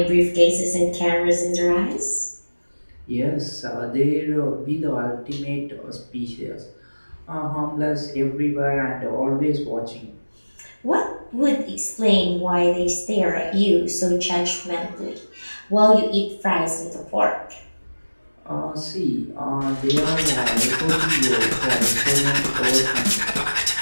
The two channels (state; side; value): inverted; both; correlation -1.00